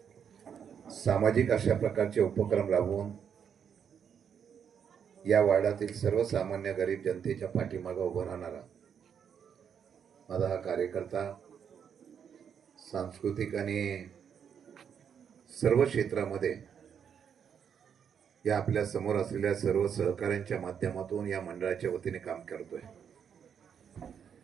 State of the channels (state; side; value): quieter; left; 7.7 dB